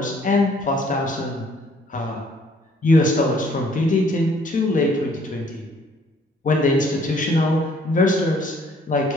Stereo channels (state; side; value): normal; both; correlation 0.61